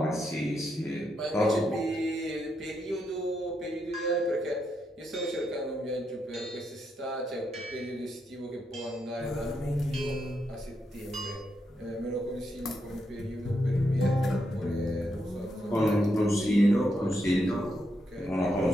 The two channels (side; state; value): both; normal; correlation 0.81